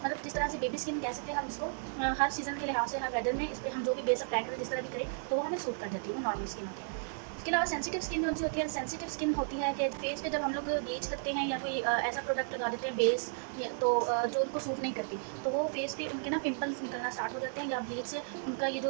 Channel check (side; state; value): left; silent; digital silence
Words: मतलब जिस तरह से बेबी स्किन कह सकते हैं हम इसको, हर सीज़न के लिहाज से, हर वेदर में इस पर हम जो भी बेस अप्लाई करें, जिस तरह भी करें तो वो हमें सूट कर जाती है, वो नॉर्मल स्किन होती है। उसके अलावा सेंसिटिव स्किन जो होती है, सेंसिटिव स्किन होती है कि फेस पे जब हम लोग ब्लीच करते हैं या कोई ऐसा प्रोडक्ट लगा देते हैं बेस तो जो उनको सूट नहीं करती, तो वो फेस पे उनके ना पिंपल्स निकलना स्टार्ट हो जाते हैं, या ब्लीच से उनका ये